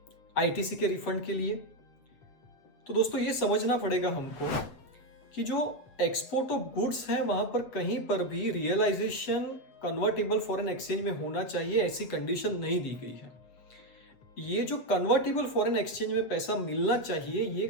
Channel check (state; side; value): late; right; 7.6 ms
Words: आईटीसी के रिफंड के लिए? तो दोस्तों ये समझना पड़ेगा हमको कि जो एक्सपोर्ट ऑफ गुड्स है वहां पर कहीं पर भी रियलाइजेशन कन्वर्टेबल फॉरेन एक्सचेंज में होना चाहिए ऐसी कंडीशन नहीं दी गई है। ये जो कन्वर्टेबल फॉरेन एक्सचेंज में पैसा मिलना चाहिए ये